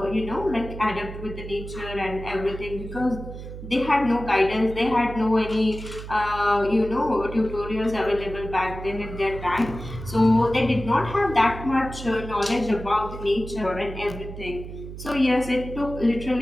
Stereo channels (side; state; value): right; noise; hum, 11 dB below the sound